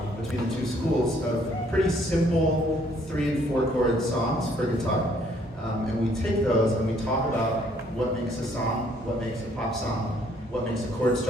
between the two schools of pretty simple 3 and 4 chord songs for guitar. And we take those and we talk about what makes a song, what makes a pop song, what makes a chord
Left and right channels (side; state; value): both; normal; correlation 0.64